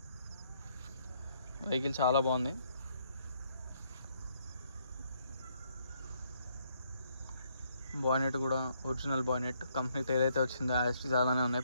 వెహికల్ చాలా బాగుంది. బానెట్ కూడా ఒరిజినల్ బానెట్, కంపెనీతో ఏదైతే వచ్చిందో యాస్టీస్ అలానే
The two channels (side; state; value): both; inverted; correlation -0.71